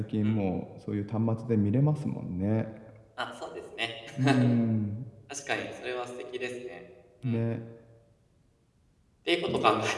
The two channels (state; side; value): identical; both; correlation 1.00